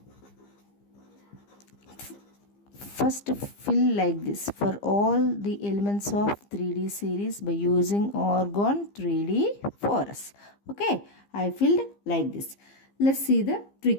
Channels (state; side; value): late; right; 15 ms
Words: First fill like this for all the elements of 3D series by using argon 3D4s. I filled like this. Let's see the